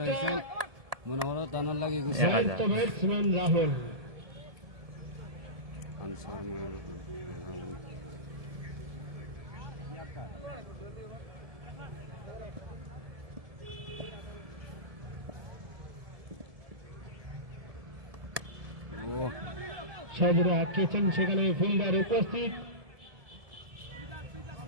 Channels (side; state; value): left; late; 1.7 ms